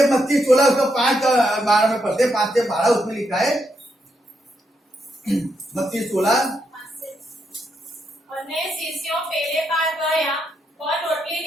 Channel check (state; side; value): normal; both; correlation 0.80